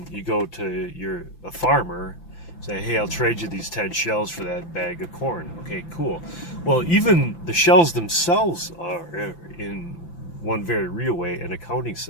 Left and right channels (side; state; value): right; late; 5.9 ms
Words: you go to a farmer, say, hey, I'll trade you these 10 shells for that bag of corn. Okay, cool. Well, even the shells themselves are in one very real way, an accounting